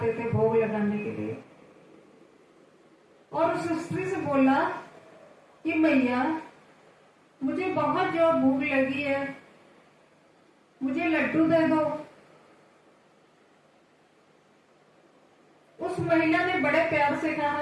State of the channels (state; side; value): identical; both; correlation 1.00